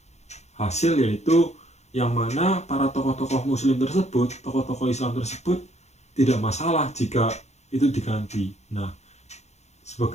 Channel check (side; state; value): right; late; 0.32 ms